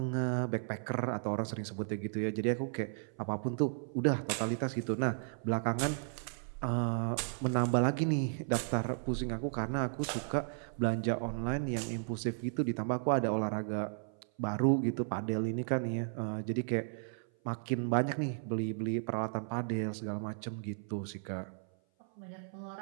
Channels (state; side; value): silent; left; 55 dB below the other